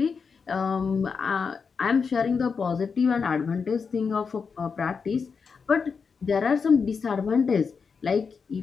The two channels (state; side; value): quieter; right; 5.6 dB